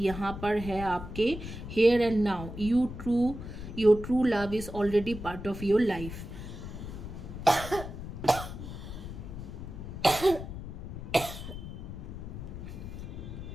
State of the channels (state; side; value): noise; left; rumble, 9 dB below the sound